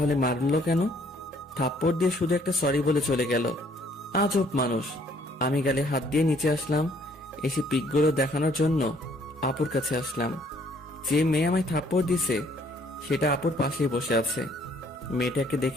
মারলো কেন? থাপ্পড় দিয়ে শুধু একটা সরি বলে চলে গেল। আজব মানুষ। আমি গালে হাত দিয়ে নিচে আসলাম, এসে পিকগুলো দেখানোর জন্য আপুর কাছে আসলাম। যে মেয়ে আমায় থাপ্পড় দিছে সেটা আপুর পাশেই বসে আছে। মেয়েটাকে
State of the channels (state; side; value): normal; both; correlation 0.63